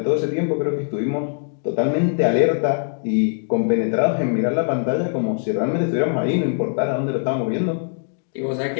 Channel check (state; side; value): silent; right; digital silence